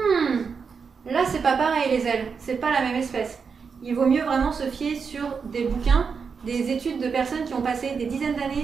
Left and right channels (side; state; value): left; quieter; 5.7 dB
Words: là, c'est pas pareil les ailes, c'est pas la même espèce. Il vaut mieux vraiment se fier sur des bouquins, des études de personnes qui ont passé des dizaines